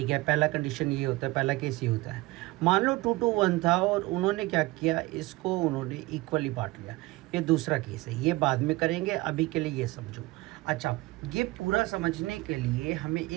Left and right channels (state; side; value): quieter; left; 20.9 dB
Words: है, पहला कंडीशन ये होता है, पहला केस ये होता है। मान लो 2:1 था और उन्होंने क्या किया, इसको उन्होंने इक्वली बांट लिया। ये दूसरा केस है, ये बाद में करेंगे, अभी के लिए ये समझो। अच्छा, ये पूरा समझने के लिए हमें